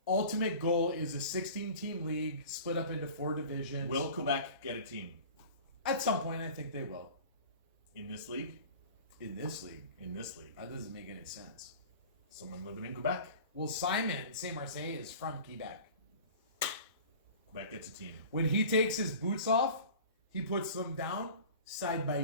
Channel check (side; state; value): both; inverted; correlation -0.41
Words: ultimate goal is a 16-team league split up into 4 divisions. Will Quebec get a team At some point, I think they will. in this league? In this league. In this league. That doesn't make any sense. Someone living in Quebec. Well, Simon Saint-Marseille is from Quebec. Quebec gets a team. When he takes his boots off, he puts them down side by